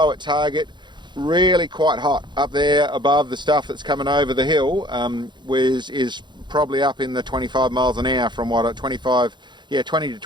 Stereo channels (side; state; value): left; late; 0.22 ms